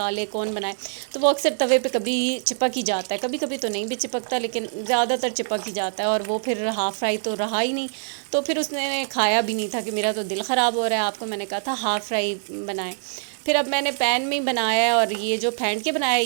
कौन बनाए, तो वो अक्सर तवे पे कभी चिपक ही जाता है, कभी कभी तो नहीं भी चिपकता लेकिन ज़्यादातर चिपक ही जाता है। और वो फिर हाफ़ फ्राई तो रहा ही नहीं, तो फिर उसने खाया भी नहीं था कि मेरा तो दिल ख़राब हो रहा है, आपको मैंने कहा था हाफ़ फ्राई बनाएं। फिर अब मैंने पैन में ही बनाया है और ये जो फेंट के बनाया है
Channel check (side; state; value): left; silent; digital silence